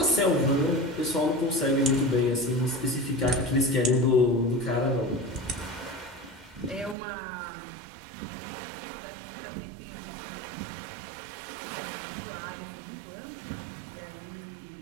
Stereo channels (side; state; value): left; drops out; at 7.0 s